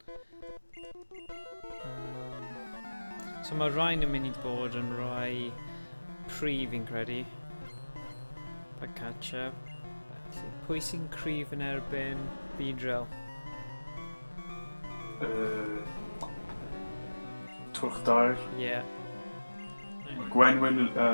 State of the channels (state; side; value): inverted; both; correlation -1.00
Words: So mae rhain yn mynd i bod yn rhai prif fi'n credu. Pagcatcha. Pwy sy'n cryf yn erbyn Beedrill? Twrchdair. Ie. Gwenwyn,